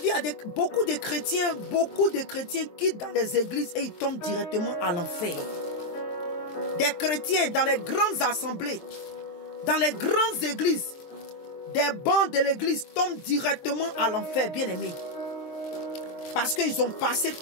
il y a beaucoup de chrétiens quittent dans les églises et ils tombent directement à l'enfer. Des chrétiens dans les grandes assemblées, dans les grandes églises, des bancs de l'église tombent directement à l'enfer, bien aimé. Parce qu'ils ont passé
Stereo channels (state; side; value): late; right; 23 ms